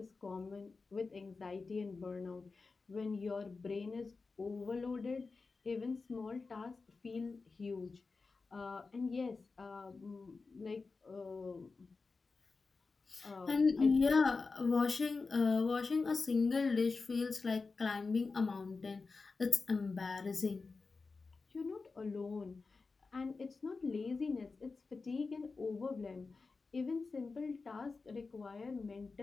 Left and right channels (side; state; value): right; quieter; 4.2 dB